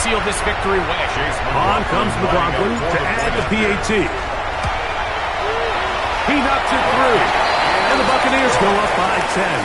seal this victory away. On comes McLaughlin to add the PAT. He knocks it through. And the Buccaneers go up by 10.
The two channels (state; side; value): identical; both; correlation 1.00